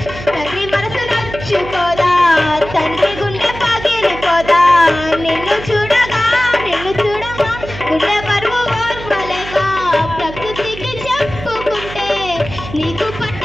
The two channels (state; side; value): noise; right; hum, 12 dB below the sound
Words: తండ్రి మనసు నచ్చుకోదా తండ్రి గుండె పగిలిపోదా నిన్ను చూడగా గుండె బరువు ఓర్వలేక ప్రకృతికి చెప్పుకుంటే నీకు